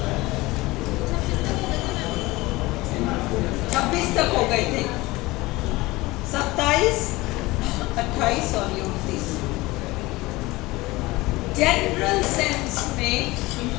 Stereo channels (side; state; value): right; quieter; 20.6 dB